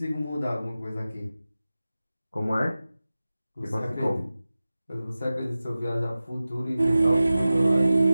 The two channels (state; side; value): inverted; both; correlation -0.96